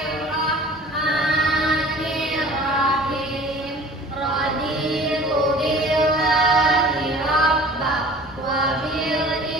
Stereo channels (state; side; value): normal; both; correlation 0.45